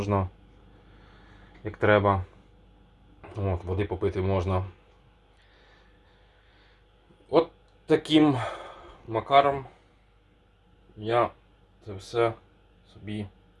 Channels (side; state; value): both; identical; correlation 1.00